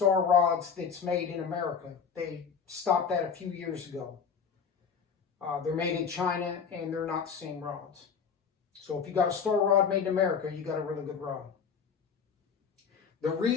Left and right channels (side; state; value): right; quieter; 6.4 dB